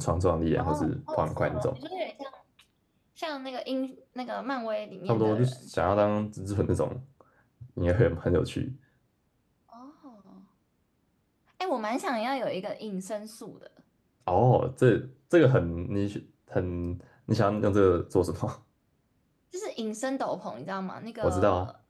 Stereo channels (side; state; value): both; identical; correlation 1.00